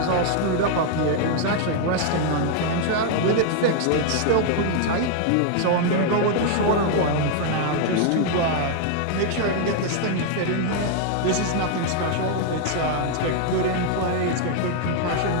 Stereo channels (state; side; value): different; both; correlation 0.00